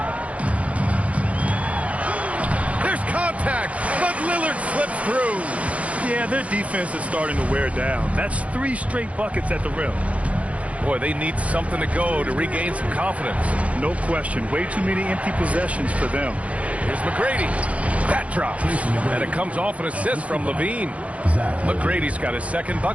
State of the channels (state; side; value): late; left; 0.065 ms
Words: There's contact, but Lillard slips through. Yeah, their defense is starting to wear down. That's 3 straight buckets at the rim. Boy, they need something to go to regain some confidence. No question. Way too many empty possessions for them. Here's McGrady. That drops. And it comes off an assist from LaVine. McGrady's got his second